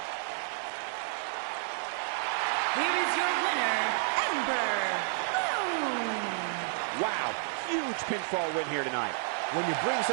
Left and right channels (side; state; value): left; silent; 57 dB below the other